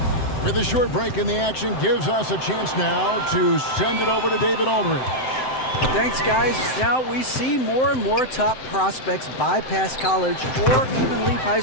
With a short break in the action, gives us a chance now to send it over to David Aldridge. Thanks, guys. Now we see more and more top prospects bypass college or even leave high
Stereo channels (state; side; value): late; right; 7.8 ms